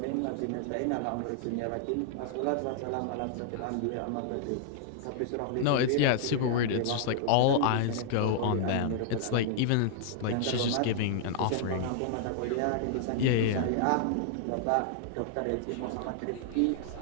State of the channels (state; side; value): different; both; correlation -0.01